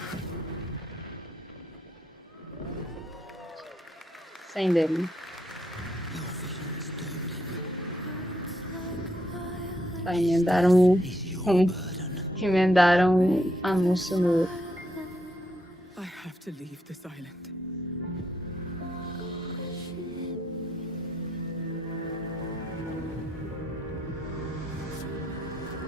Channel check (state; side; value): normal; both; correlation 0.77